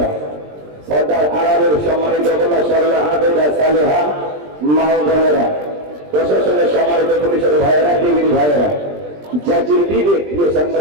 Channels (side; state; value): left; late; 20 ms